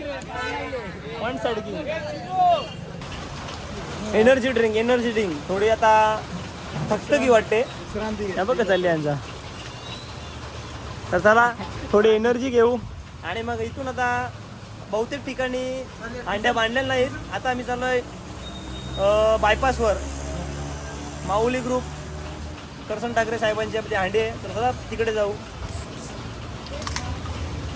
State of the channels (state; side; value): identical; both; correlation 1.00